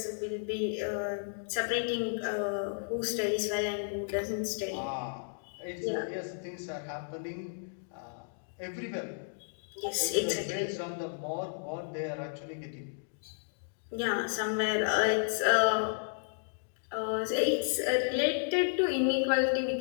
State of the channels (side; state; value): right; silent; digital silence